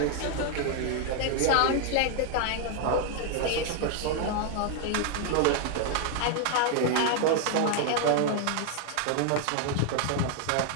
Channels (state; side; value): different; both; correlation 0.00